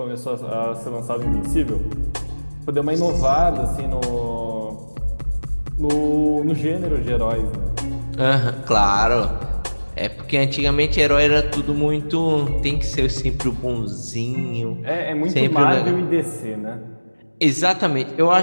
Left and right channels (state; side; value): inverted; both; correlation -1.00